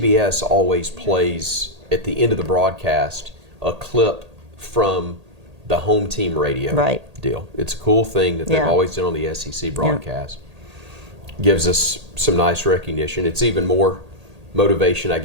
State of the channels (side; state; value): left; late; 1.8 ms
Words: always plays at the end of the broadcast a clip from the home team radio deal. It's a cool thing that they've always done on the SEC broadcast. Gives us some nice recognition. It's even more motivation, I